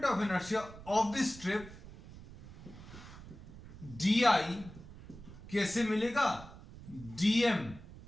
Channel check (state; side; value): noise; right; rumble, 16 dB below the sound